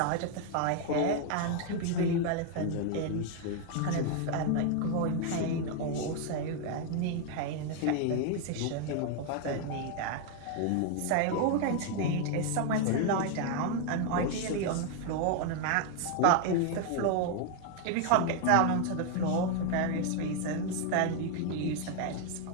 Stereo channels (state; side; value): different; both; correlation 0.01